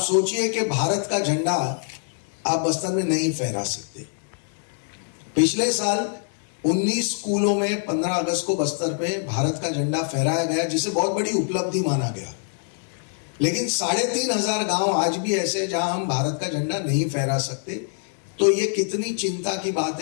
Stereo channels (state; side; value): silent; right; 62 dB below the other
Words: सोचिए कि भारत का झंडा आप बस्तर में नहीं फहरा सकते। पिछले साल 19 स्कूलों में 15 अगस्त को बस्तर पे भारत का झंडा फहराया गया, जिसे बहुत बड़ी उपलब्धि माना गया। लेकिन 3500 गांव आज भी ऐसे हैं जहां हम भारत का झंडा नहीं फहरा सकते। तो ये कितनी चिंता की बात